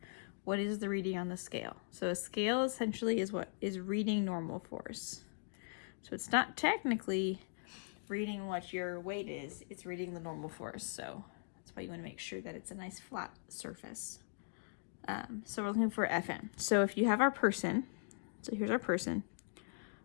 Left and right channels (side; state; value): right; silent; digital silence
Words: What is the reading on the scale? So a scale essentially is what is reading normal force. So it's not technically reading what your weight is, it's reading the normal force. So that's why you want to make sure that it's a nice flat surface. So we're looking for Fn. So if you have our person, so here's our person,